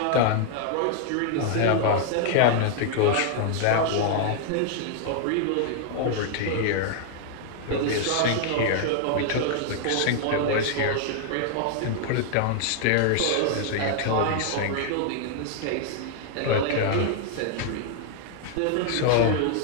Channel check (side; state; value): both; different; correlation 0.00